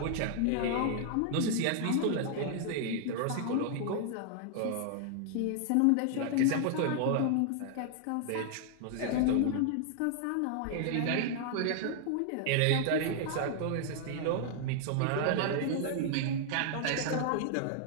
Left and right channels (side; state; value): both; different; correlation 0.00